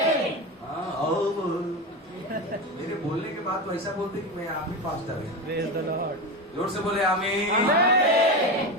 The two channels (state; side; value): normal; both; correlation 0.20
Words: हाँ, मेरे बोलने के बाद तो ऐसा बोलते कि मैं आप ही पास्टर है। जोर से बोले आमीन।